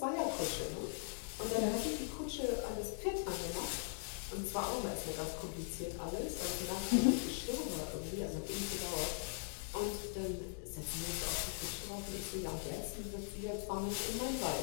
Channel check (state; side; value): silent; right; digital silence